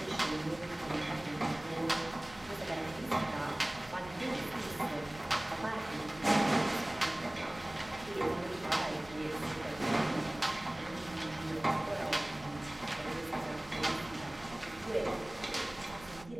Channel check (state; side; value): noise; right; rumble, 20 dB below the sound